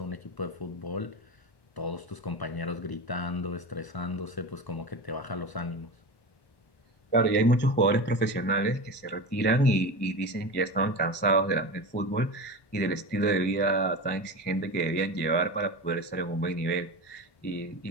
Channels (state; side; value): late; right; 1.1 ms